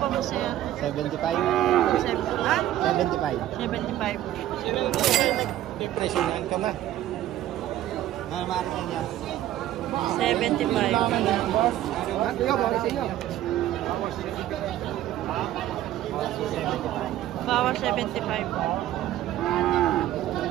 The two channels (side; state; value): left; quieter; 13.3 dB